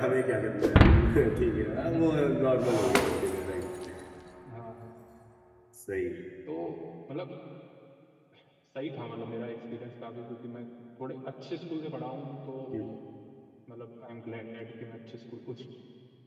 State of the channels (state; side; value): identical; both; correlation 1.00